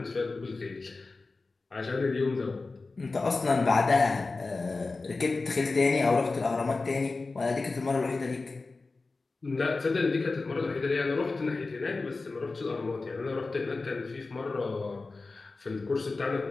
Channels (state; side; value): quieter; right; 3.7 dB